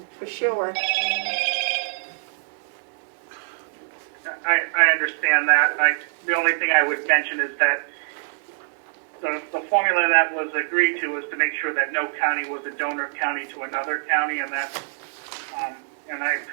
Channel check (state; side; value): silent; left; digital silence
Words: for sure. I understand that. The only thing I would mention is that the formula that was agreed to was to make sure that no county was a donor county to another county, and that, and I